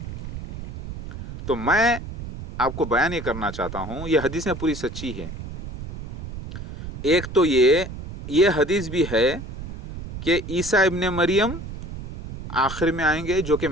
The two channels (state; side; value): noise; right; rumble, 9 dB below the sound